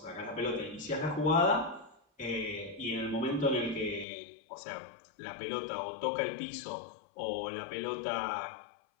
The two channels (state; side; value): drops out; right; at 4.0 s